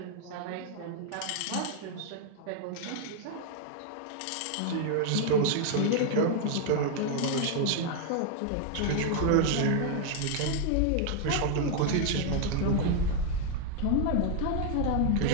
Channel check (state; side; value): different; both; correlation 0.00